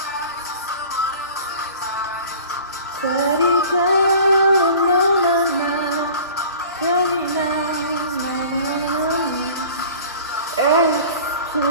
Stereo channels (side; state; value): both; inverted; correlation -0.43